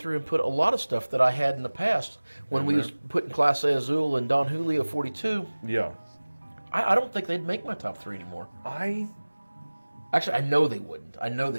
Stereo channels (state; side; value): inverted; both; correlation -1.00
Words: and put a lot of stuff that I had in the past when we was putting Clase Azul and Don Julio 42. Yeah. I don't think they'd make my top 3 anymore. Actually, I know they wouldn't.